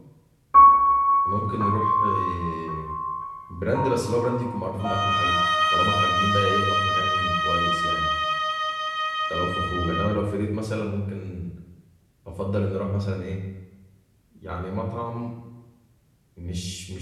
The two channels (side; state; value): both; identical; correlation 1.00